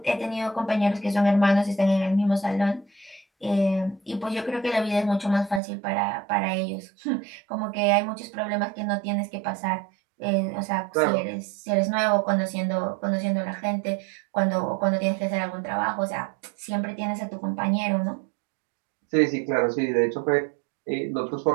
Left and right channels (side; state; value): left; drops out; at 5.6 s